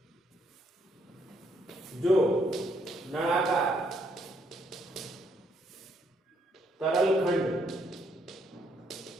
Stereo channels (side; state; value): both; normal; correlation 0.71